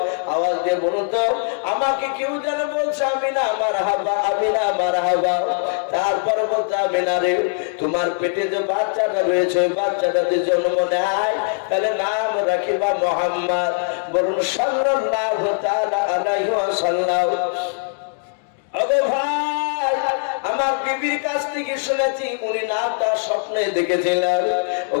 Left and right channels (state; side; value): silent; right; digital silence